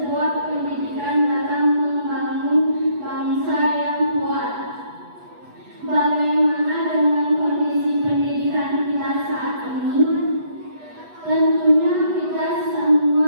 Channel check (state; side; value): late; left; 8.2 ms